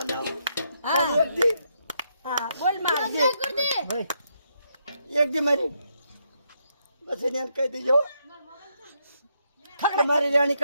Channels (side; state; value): both; inverted; correlation -0.78